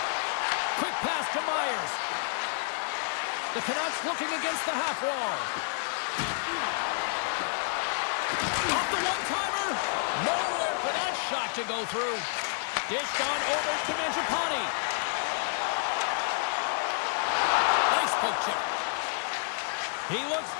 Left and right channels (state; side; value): silent; right; digital silence